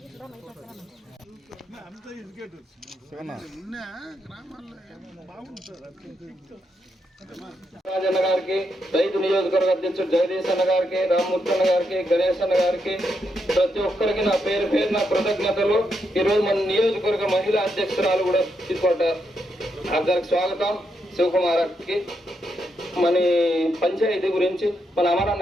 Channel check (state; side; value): normal; both; correlation 0.81